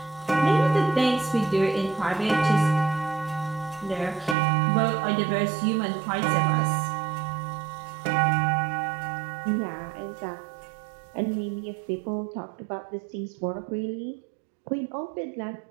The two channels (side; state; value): left; drops out; at 4.4 s